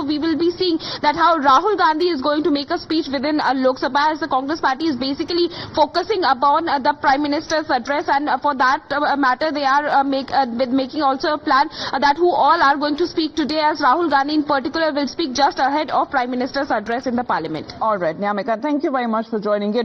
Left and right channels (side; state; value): both; identical; correlation 1.00